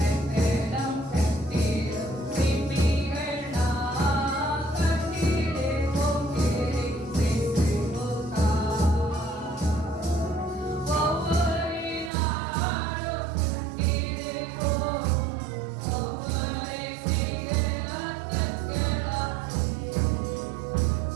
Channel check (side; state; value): left; drops out; at 12.1 s